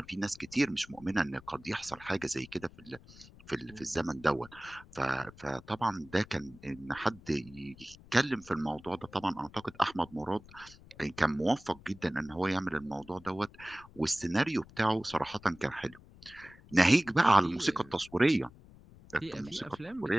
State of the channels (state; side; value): noise; left; rumble, 22 dB below the sound